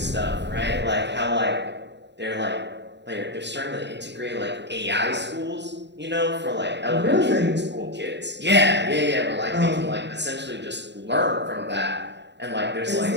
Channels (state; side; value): late; left; 0.51 ms